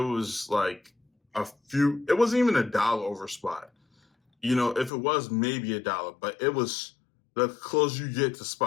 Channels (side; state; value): right; drops out; at 4.9 s